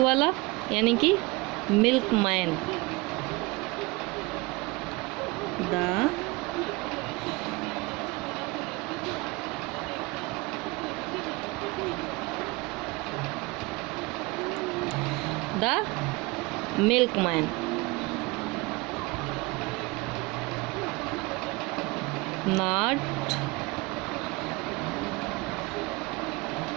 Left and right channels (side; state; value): left; quieter; 24.6 dB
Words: यानी कि milkman. The milkman. Not